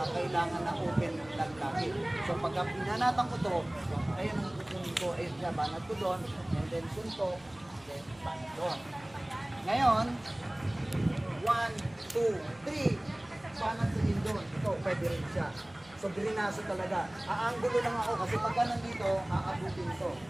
kailangan na open lang lagi. So pagka pinanatan ko to, ayun ang kukunin ko, ayun siya, banat ko doon, and then suntok, then banat doon. Ngayon, 1, 2, 3, banat sa din doon. Ito, pwede rin siya. So drinaso talaga. Aangulo lang ako kasi pagka nandito, aabutin ito.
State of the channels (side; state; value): right; noise; rumble, 27 dB below the sound